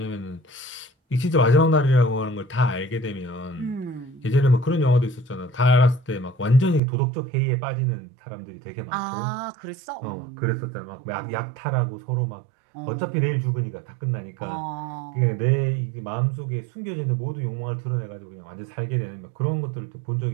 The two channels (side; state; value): left; drops out; at 6.8 s